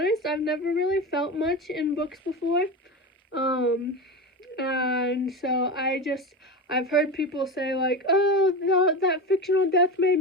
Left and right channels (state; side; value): normal; both; correlation 0.22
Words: I've never really felt much in books before, and so I've heard people say, like, oh, that fictional death made